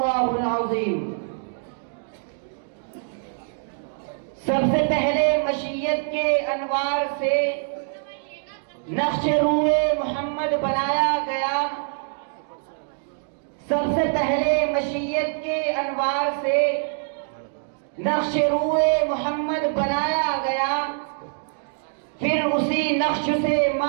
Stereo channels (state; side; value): silent; left; digital silence